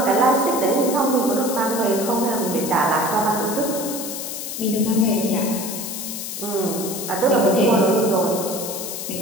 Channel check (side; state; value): left; noise; hiss, 6 dB below the sound